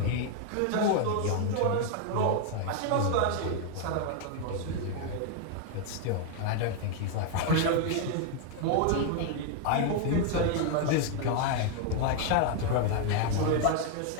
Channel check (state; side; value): different; both; correlation 0.00